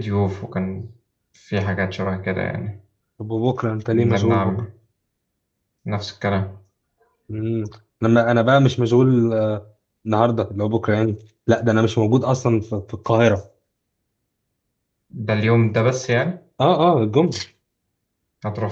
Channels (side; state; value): both; identical; correlation 1.00